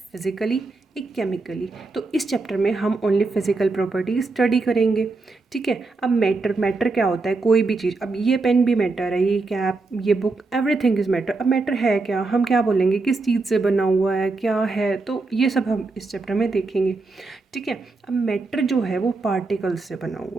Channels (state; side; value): quieter; left; 3.7 dB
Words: फिज़िकली, एक केमिकली। तो इस चैप्टर में हम ओनली फिज़िकल प्रॉपर्टी स्टडी करेंगे, ठीक है। अब मैटर मैटर क्या होता है? कोई भी चीज़। अब ये पेन भी मैटर है, ये कैप, ये बुक, एवरीथिंग इज़ मैटर। अब मैटर है क्या, हम क्या बोलेंगे, किस चीज़ से बना हुआ है, क्या है, तो ये सब हम इस चैप्टर में देखेंगे, ठीक है। अब मैटर जो है वो पार्टिकल्स से बना